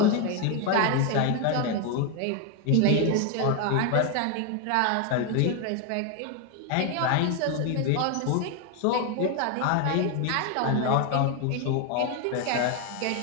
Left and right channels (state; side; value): different; both; correlation 0.01